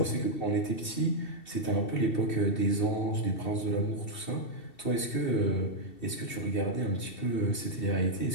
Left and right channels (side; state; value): right; late; 2.7 ms